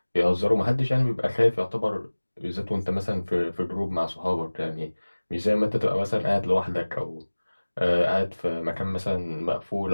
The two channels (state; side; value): inverted; both; correlation -1.00